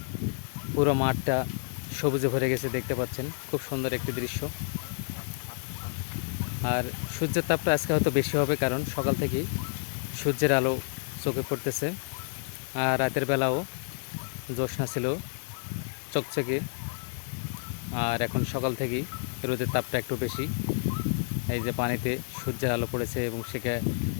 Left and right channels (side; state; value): right; silent; digital silence